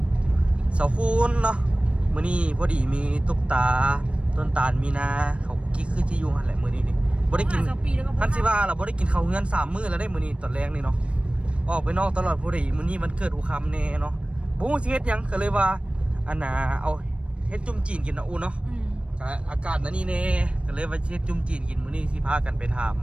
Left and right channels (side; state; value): left; late; 0.060 ms